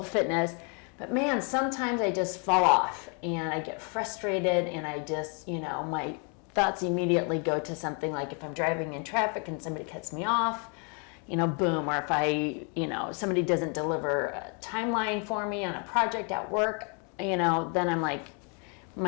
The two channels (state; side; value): quieter; right; 36.9 dB